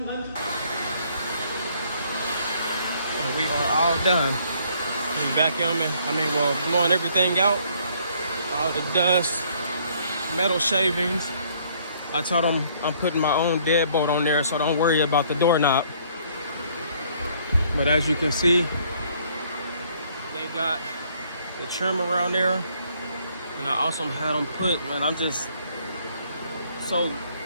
And we are all done. We vacuuming, blowing everything out. All the dust, metal shavings. I told them I'm putting my own deadbolt on there, so don't worry about the doorknob. But as you can see, they got the trim around there. And I also had them put, man, I'm just so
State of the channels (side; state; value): both; inverted; correlation -0.63